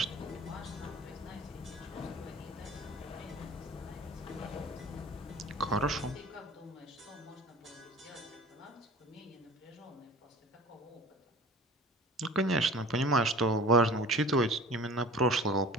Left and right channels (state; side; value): normal; both; correlation 0.42